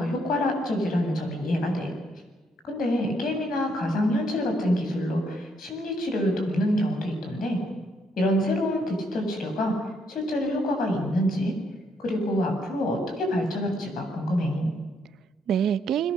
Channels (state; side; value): normal; both; correlation 0.73